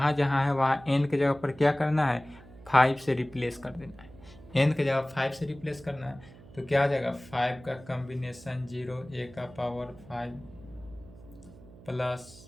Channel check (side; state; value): right; noise; hum, 20 dB below the sound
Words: जहाँ है वहाँ n के जगह पर क्या करना है, 5 से रिप्लेस कर देना है। n के जगह 5 से रिप्लेस करना है तो क्या आ जाएगा, 5 का कॉम्बिनेशन 0 a का पावर 5 प्लस